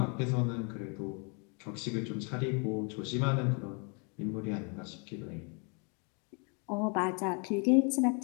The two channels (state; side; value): quieter; right; 35.8 dB